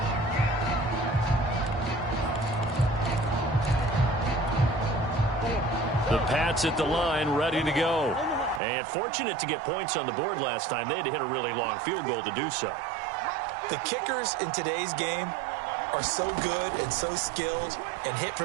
The Pats at the line, ready to go. And fortunate to get points on the board last time. They had to hit a really long field goal to do so. The kickers in today's game are so good and so skilled and hit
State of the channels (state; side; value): drops out; left; at 8.6 s